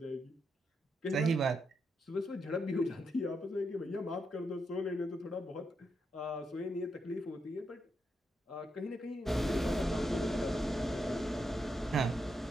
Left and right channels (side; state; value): both; normal; correlation 0.82